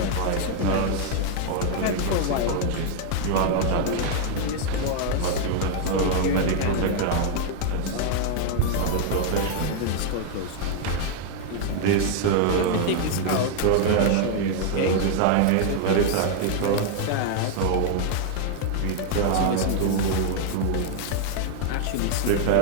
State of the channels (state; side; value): different; both; correlation 0.00